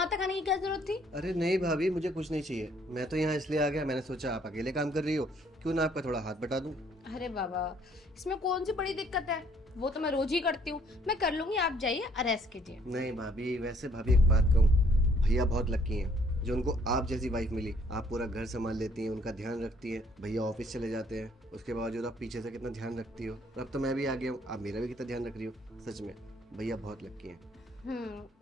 तक आने की क्या जरूरत थी? अरे नहीं भाभी, मुझे कुछ नहीं चाहिए। मैं तो यहाँ इसलिए आ गया, मैंने सोचा आप अकेले काम कर रही हो, क्यों ना आपका थोड़ा हाथ बटा दूं। अरे बाबा, इसमें कौन सी बड़ी दिक्कत है? वो तो मैं रोज ही करती हूँ, मैं कर लूंगी। आप जाइए, रेस्ट कीजिए। नहीं भाभी, वैसे भाभी एक बात कहूँ, भैया बहुत लकी हैं जो उनको आप जैसी वाइफ मिली। आप पूरा घर संभाल लेती हैं, उनका ध्यान रखती हैं। भैया ऑफिस चले जाते हैं, उसके बावजूद आप पीछे से कितना ध्यान रखती हो। और अब तो मैं भी आ गया हूँ, आप मेरा भी कितना ध्यान रख रही हो। सच में भैया बहुत लकी हैं।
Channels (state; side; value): normal; both; correlation 0.63